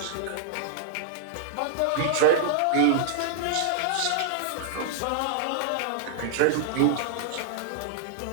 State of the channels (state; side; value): different; both; correlation -0.01